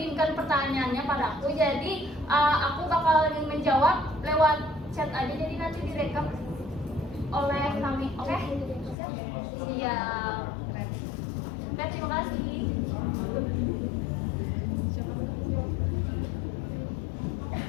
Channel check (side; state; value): right; drops out; at 9.0 s